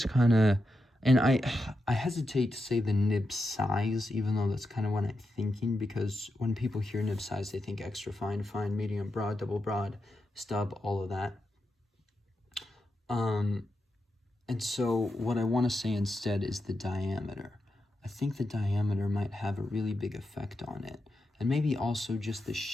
kind of, and I hesitate to say the nib size, even though that's kind of what I'm thinking, because when people hear nib size, they think extra fine, fine, medium, broad, double broad, stub, all of that. And so what I want to say instead is the diameter. I think the diameter might have a really big effect on it. And maybe also just the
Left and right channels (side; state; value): both; normal; correlation 0.87